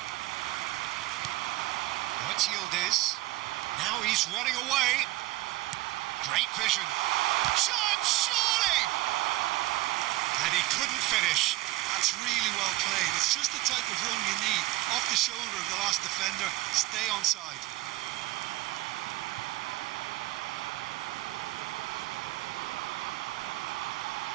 Now it's Yildiz. Now he's running away. Great vision. Chance, surely! And he couldn't finish. That's really well played. It's just the type of run you need. Off the shoulder of the last defender. Stay onside.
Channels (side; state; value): left; quieter; 18.3 dB